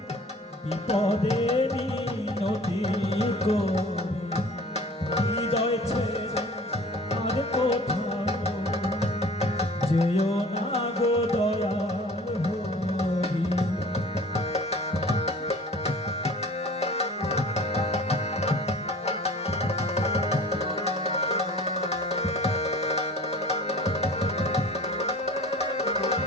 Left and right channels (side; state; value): both; normal; correlation 0.45